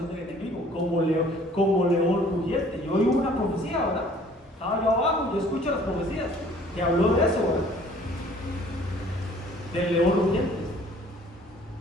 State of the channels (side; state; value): both; normal; correlation 0.55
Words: del enemigo, como león rugiente. Yo oí una profecía, ¿verdad? Estaba yo abajo, yo escucho las profecías que habló de eso, ¿verdad? Del león rugiente.